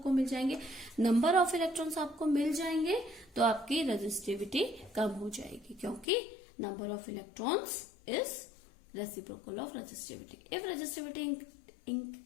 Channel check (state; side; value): drops out; right; at 6.1 s